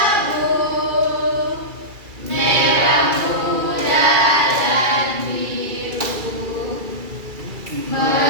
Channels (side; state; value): left; late; 2.3 ms